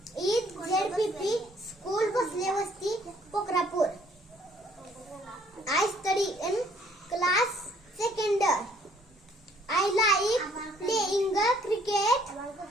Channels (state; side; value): normal; both; correlation 0.63